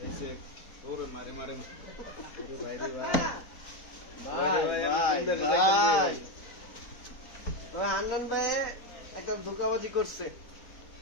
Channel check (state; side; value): late; right; 4.1 ms